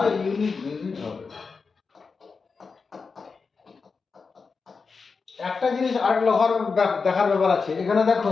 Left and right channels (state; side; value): quieter; right; 4.9 dB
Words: ইউনিট ডিজিট হবে। একটা জিনিস আর দেখার ব্যাপার আছে, এখানে